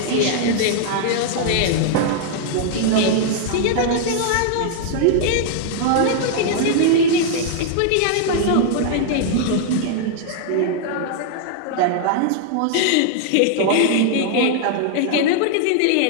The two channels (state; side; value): different; both; correlation -0.01